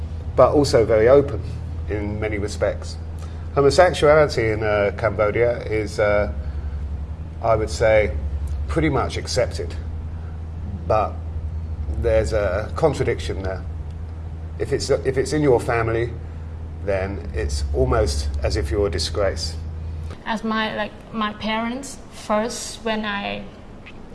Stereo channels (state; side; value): identical; both; correlation 1.00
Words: but also very open in many respects. Homosexuality in Cambodia is, I would say, pretty much accepted, but there's a contradiction there. If it's in your family, then it's almost as if you're a disgrace. As my parents, first when I